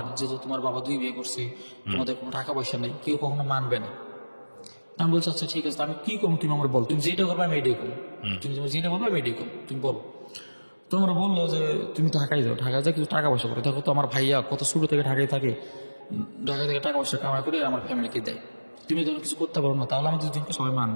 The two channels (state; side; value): inverted; both; correlation -1.00